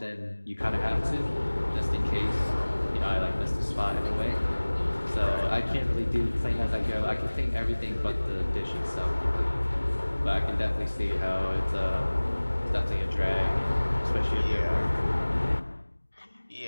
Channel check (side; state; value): both; inverted; correlation -1.00